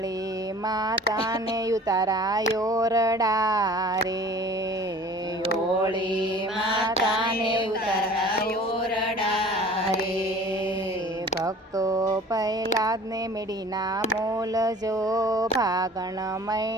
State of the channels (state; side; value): normal; both; correlation 0.46